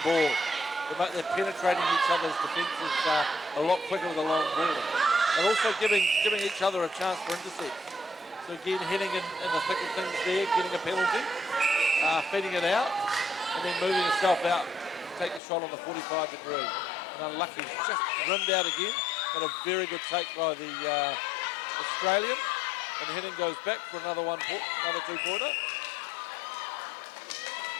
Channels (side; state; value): right; drops out; at 15.4 s